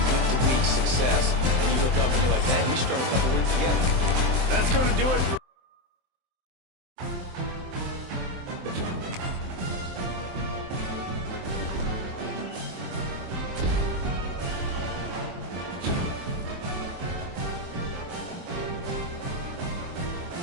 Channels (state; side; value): late; left; 23 ms